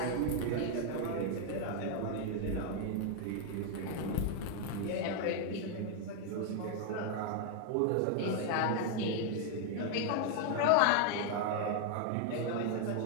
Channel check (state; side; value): different; both; correlation 0.00